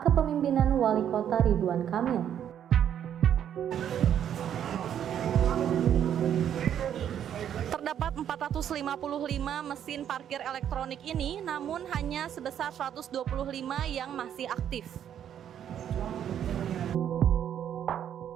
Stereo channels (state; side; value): quieter; left; 9.6 dB